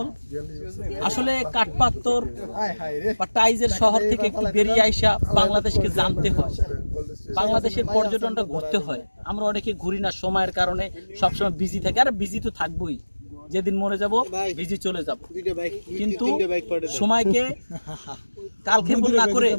আসলে কাঠপাত্তর বা টাইজের শহর থেকে একটু বেরিয়ে আইসা বাংলাদেশকে জানতে হয়, বাংলাদেশের পর্যটনটা ঘুরতে হয়। আমরা অনেকে ঘুরি না সময়ের কারণে, সবসময় বিজি থাকি। আর বিজি তো থাকবোই, যেদিন মরে যাব বিজি চলে যাব, কিন্তু সময়কে কালক্ষেপণ না করে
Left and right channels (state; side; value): inverted; both; correlation -1.00